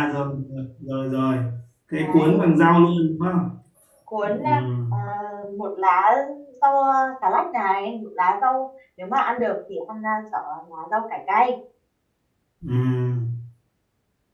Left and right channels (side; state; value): both; identical; correlation 1.00